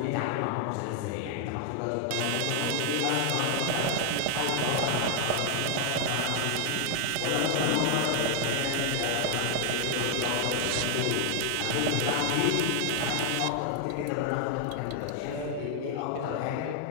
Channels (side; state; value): both; different; correlation 0.00